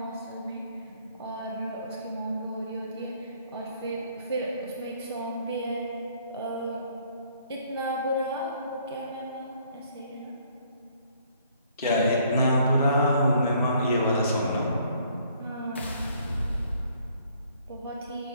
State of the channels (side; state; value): both; inverted; correlation -0.63